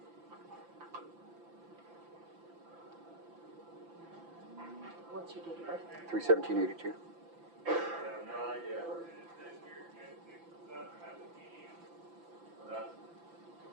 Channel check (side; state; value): left; late; 5.9 ms